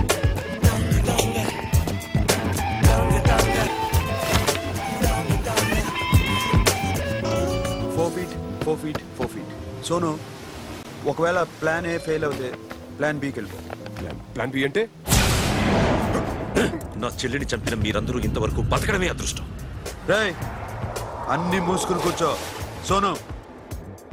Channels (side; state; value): both; identical; correlation 1.00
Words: సోను, ఒకవేళ ప్లాన్ ఏ ఫెయిల్ అవుతే ప్లాన్ బికి వెళ్ళిపో. ప్లాన్ బి అంటే? నా చెల్లిని చంపిన మీరందరూ ఇంతవరకు బతకడమే అదృష్టం. రేయ్, అన్ని మూసుకుని కూర్చో. సోను,